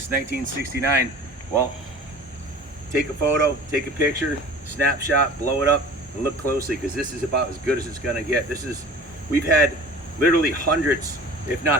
1969, well, take a photo, take a picture, snapshot, blow it up, and look closely, because this is about as good as it's gonna get. We've had literally hundreds, if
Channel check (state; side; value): normal; both; correlation 0.42